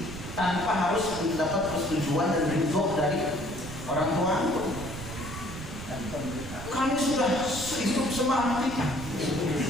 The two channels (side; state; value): right; noise; rumble, 10 dB below the sound